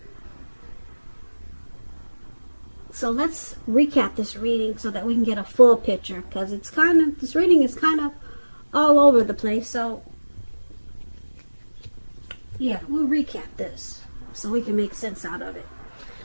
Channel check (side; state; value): both; inverted; correlation -1.00